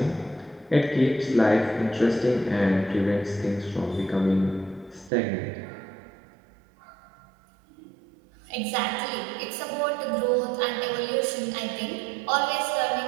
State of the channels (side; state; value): left; drops out; at 5.1 s